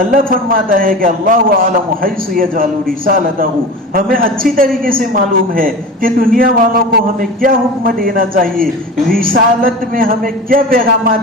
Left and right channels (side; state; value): both; normal; correlation 0.32